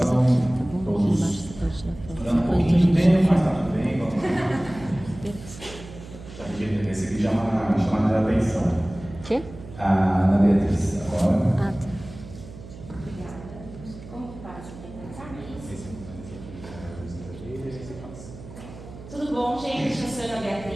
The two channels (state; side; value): noise; right; hum, 16 dB below the sound